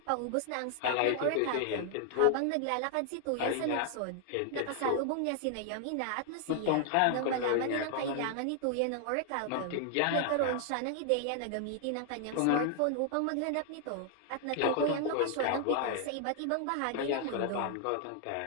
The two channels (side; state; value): both; different; correlation 0.00